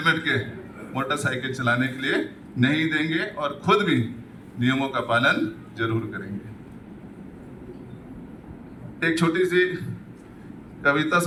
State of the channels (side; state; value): both; identical; correlation 1.00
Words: के मोटरसाइकिल चलाने के लिए नहीं देंगे और खुद भी नियमों का पालन जरूर करेंगे। एक छोटी सी कविता